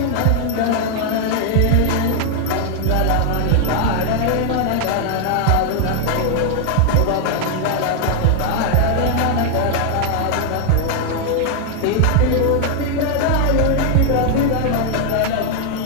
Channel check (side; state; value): both; different; correlation 0.00